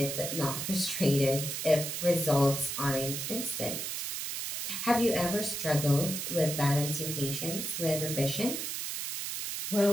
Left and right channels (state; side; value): noise; right; hiss, 4 dB below the sound